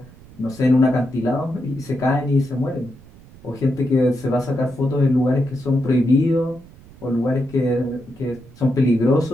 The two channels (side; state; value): right; noise; rumble, 23 dB below the sound